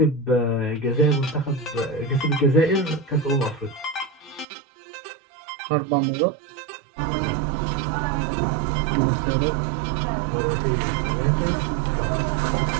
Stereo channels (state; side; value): drops out; left; at 4.5 s